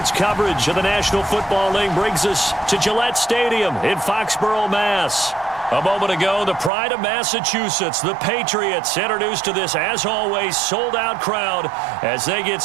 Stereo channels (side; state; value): left; drops out; at 6.7 s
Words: coverage of the National Football League brings us to Gillette Stadium in Foxborough, Mass. A moment ago, the pride of Massachusetts, the Patriots, introduced to this, as always, sold-out crowd as they get